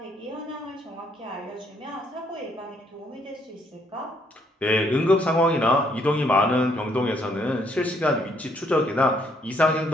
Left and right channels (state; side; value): normal; both; correlation 0.69